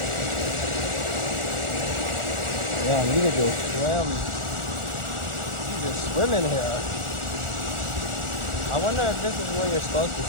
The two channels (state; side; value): late; left; 1.4 ms